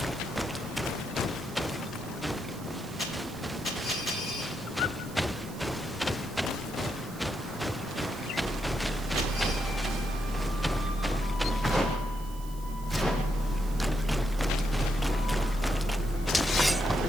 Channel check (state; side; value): noise; right; hiss, 19 dB below the sound